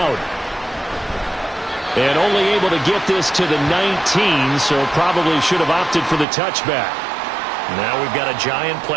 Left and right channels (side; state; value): left; drops out; at 6.2 s